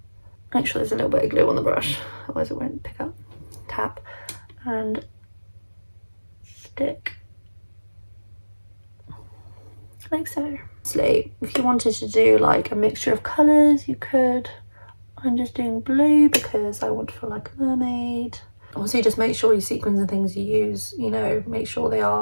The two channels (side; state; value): both; inverted; correlation -1.00